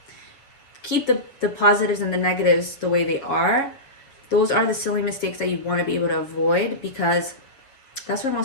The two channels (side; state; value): right; late; 7.3 ms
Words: Keep the positives and the negatives the way they are. Those are the silly mistakes that you want to be able to avoid, because that's where